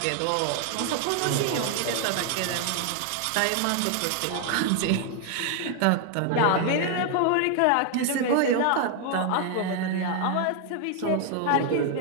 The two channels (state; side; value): different; both; correlation 0.00